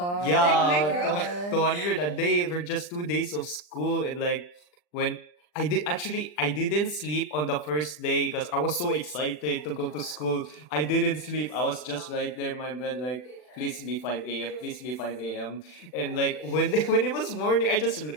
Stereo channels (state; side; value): late; right; 40 ms